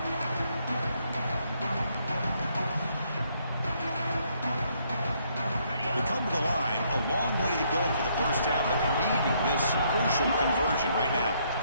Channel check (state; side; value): inverted; both; correlation -0.70